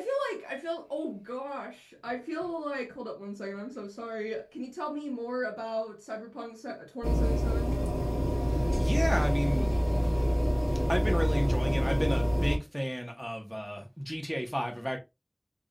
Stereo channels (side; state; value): both; identical; correlation 1.00